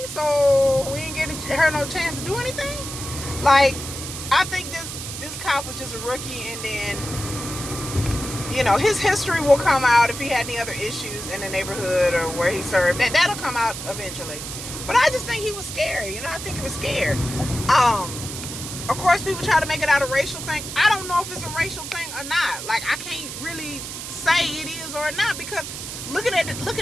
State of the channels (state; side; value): noise; right; hiss, 8 dB below the sound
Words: So we didn't get her no chance to do anything. Like, I think this cop was just a rookie, and then, you know, his history will come out if he had any other issues in the neighborhood or where he served. That'll come out eventually. But I just think he was scary. You know, I think he was scared. Of course, people try to make it out a racial thing. I don't know if it's a racial thing or not. Like, I can't really say it is or not, because looking at